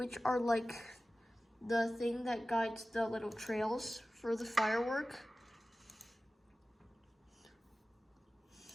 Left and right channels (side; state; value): both; normal; correlation 0.96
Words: are like the thing that guides the little trails for the firework,